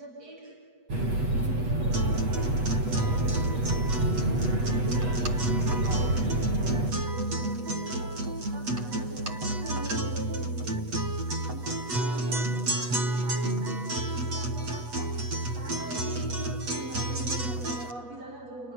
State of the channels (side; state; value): left; late; 8.2 ms